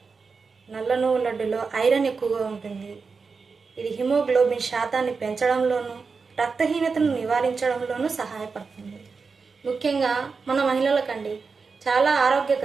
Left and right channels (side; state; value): left; quieter; 4.8 dB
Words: నల్ల నువ్వుల లడ్డులో ఐరన్ ఎక్కువగా ఉంటుంది. ఇది హిమోగ్లోబిన్ శాతాన్ని పెంచడంలోనూ రక్తహీనతను నివారించడంలోనూ సహాయపడుతుంది. ముఖ్యంగా మన మహిళలకండి చాలా